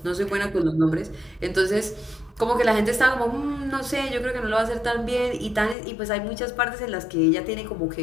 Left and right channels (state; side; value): drops out; right; at 5.8 s